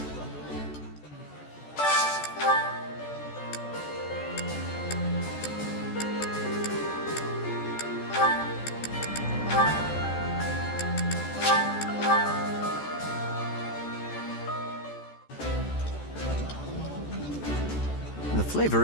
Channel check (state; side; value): late; right; 14 ms